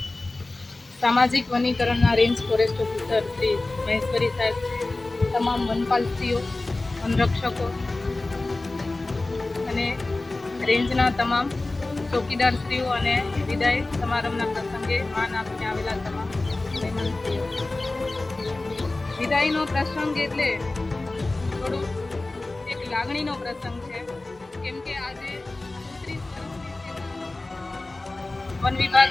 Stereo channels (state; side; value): quieter; right; 3.0 dB